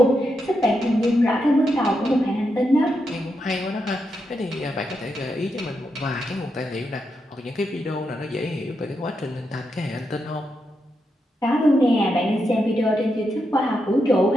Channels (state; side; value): normal; both; correlation 0.84